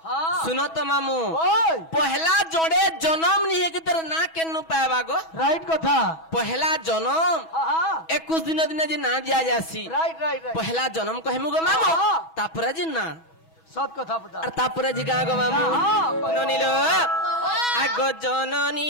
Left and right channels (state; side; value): late; right; 6.2 ms